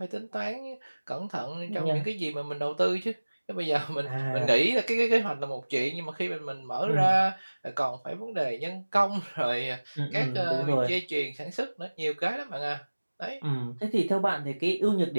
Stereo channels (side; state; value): both; inverted; correlation -1.00